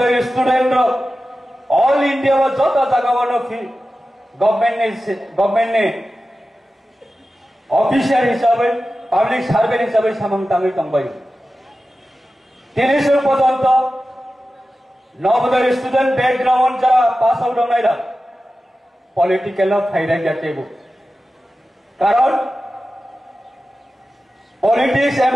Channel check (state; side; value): normal; both; correlation 0.94